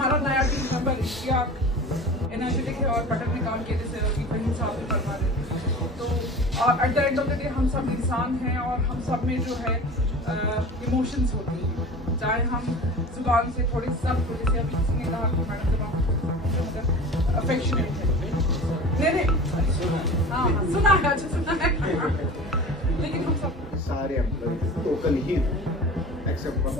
नया टीम मेंबर इश्तियाक एनर्जेटिक है और बटन में काम किए जैसे फहीम साहब भी फरमा रहे थे. तो at the end of the day हम सब इंसान हैं और हम सब में जो है इमोशंस होती हैं, चाहे हम जुबान से थोड़ी सख्त हो, जैसे अभी किसी ने कहा कि मैडम जुबान अफेक्शनेट है. नहीं हाँ सुना है, अच्छा सुना है. लेकिन हम सब सारे एम्प्लॉय टोकन ही एक्सेप्ट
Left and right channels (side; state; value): both; normal; correlation 0.37